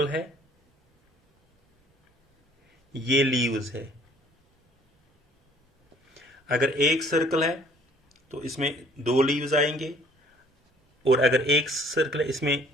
है, ये लीव्स है. अगर एक सर्कल है तो इसमें 2 लीव्स आएंगे, और अगर एक सर्कल है इसमें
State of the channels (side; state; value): both; normal; correlation 0.56